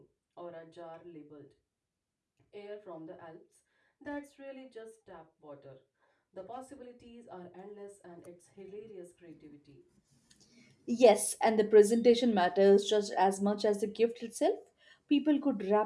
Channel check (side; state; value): both; identical; correlation 1.00